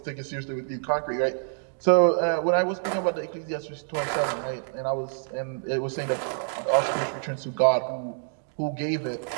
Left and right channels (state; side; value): silent; left; digital silence